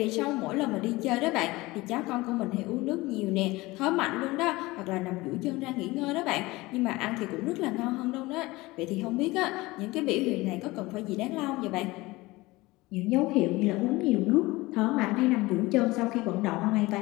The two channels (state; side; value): quieter; right; 20.8 dB